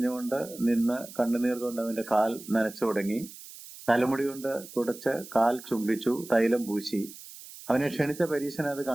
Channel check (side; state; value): right; noise; hiss, 16 dB below the sound